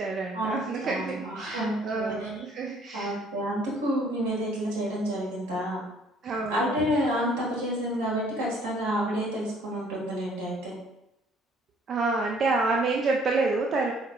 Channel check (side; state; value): both; normal; correlation 0.60